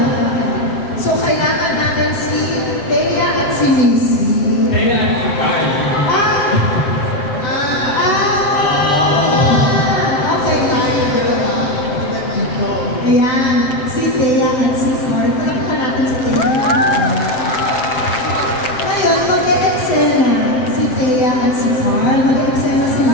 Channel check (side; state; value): right; late; 7.7 ms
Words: So kailangan natin si Thea at si Missy. Thea at si Carl. Ayan, si Thea at si Carl. Palakpan natin si Thea. Ngayon, mag-e-eksena si Thea at si Carl. Mag-e-eksena